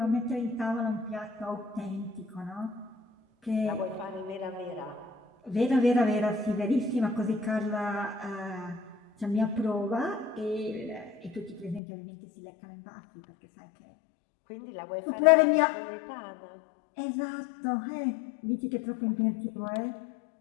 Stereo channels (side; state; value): right; drops out; at 11.8 s